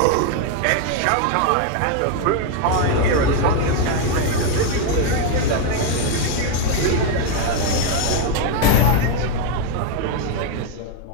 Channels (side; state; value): both; different; correlation 0.01